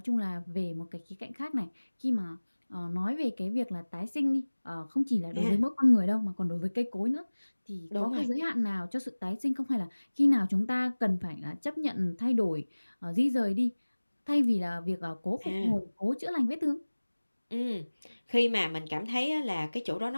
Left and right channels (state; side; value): inverted; both; correlation -1.00